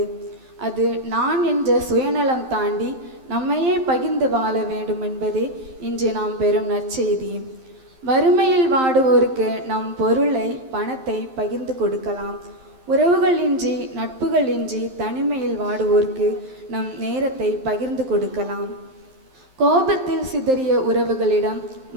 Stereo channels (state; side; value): late; left; 11 ms